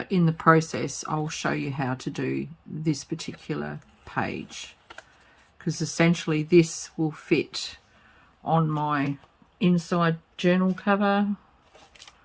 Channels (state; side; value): identical; both; correlation 1.00